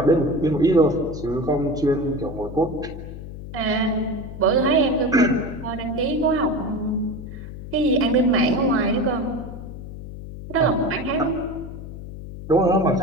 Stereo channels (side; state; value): left; noise; hum, 11 dB below the sound